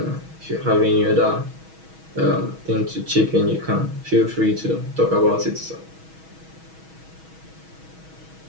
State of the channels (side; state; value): left; late; 6.2 ms